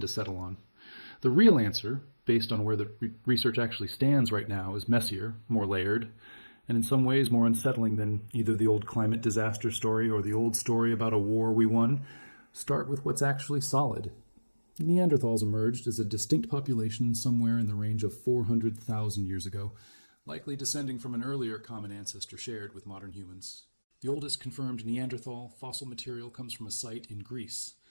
to settle on. The real answer, based on where the research actually stands right now, is messier, more layered, and in some ways more unsettling than either the old climate disaster story or the old story about a war we won. Start with what's actually solid. Neanderthals emerged as a distinct population somewhere in the range of 400,000 years ago, likely descending from an earlier common ancestor shared with modern humans. The oldest confirmed Neanderthal fossil material comes from a site in Greece,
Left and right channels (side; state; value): both; inverted; correlation -1.00